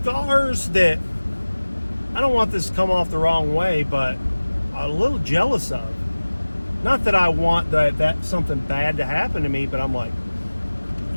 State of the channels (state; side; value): inverted; both; correlation -1.00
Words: that, I don't want this to come off the wrong way, but a little jealous of. Not that I want that something bad to happen to me, but I'm like,